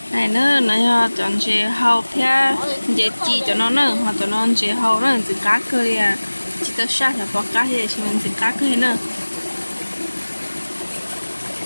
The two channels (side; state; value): both; inverted; correlation -1.00